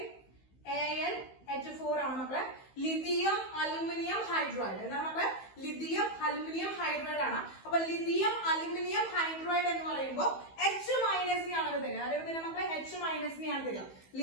ആണ് മക്കളെ. Lithium aluminium hydride. എന്താണ് മക്കളെ? ലിഥിയം അലുമിനിയം ഹൈഡ്രൈഡ് ആണ്. അപ്പൊ ലിഥിയം അലുമിനിയം ഹൈഡ്രൈഡ് എന്ന് പറയുമ്പോൾ H- ആണ് തരിക. അതേപോലെ തന്നെ മക്കളെ H- തരിക.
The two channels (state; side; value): late; right; 15 ms